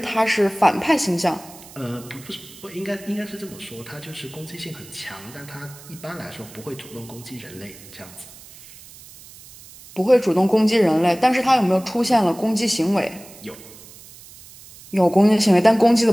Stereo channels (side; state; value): right; noise; hiss, 20 dB below the sound